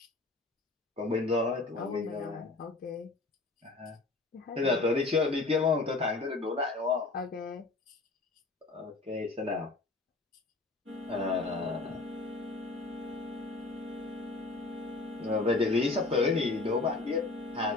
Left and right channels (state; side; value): quieter; right; 3.5 dB